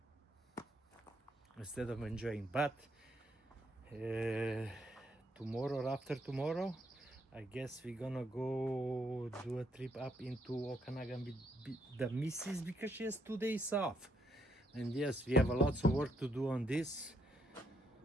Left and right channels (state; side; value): normal; both; correlation 0.75